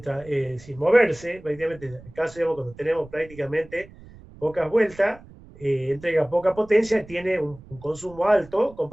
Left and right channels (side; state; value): right; noise; rumble, 21 dB below the sound